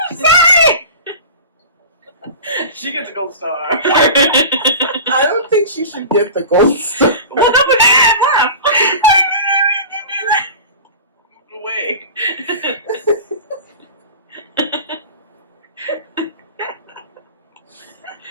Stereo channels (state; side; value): inverted; both; correlation -0.34